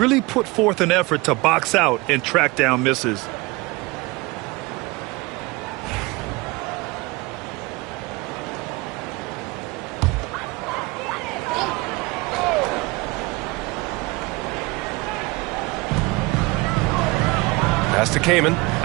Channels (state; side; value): quieter; left; 23.8 dB